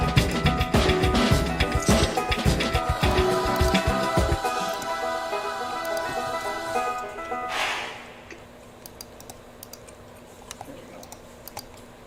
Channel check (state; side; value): identical; both; correlation 1.00